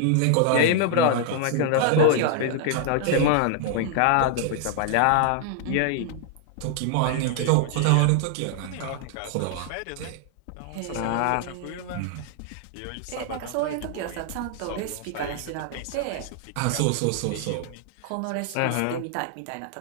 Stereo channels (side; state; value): both; different; correlation 0.00